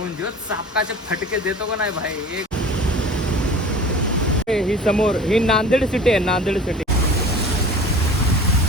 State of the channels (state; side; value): normal; both; correlation 0.41